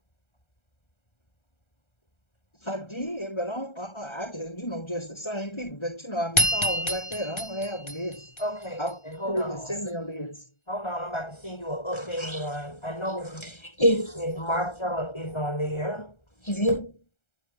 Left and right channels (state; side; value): late; right; 1.3 ms